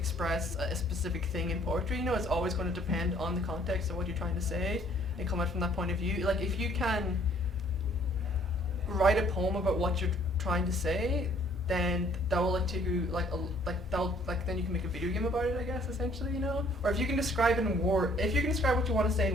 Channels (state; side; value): normal; both; correlation 0.60